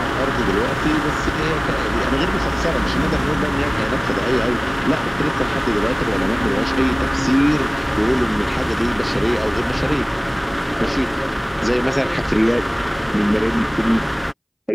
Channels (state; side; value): identical; both; correlation 1.00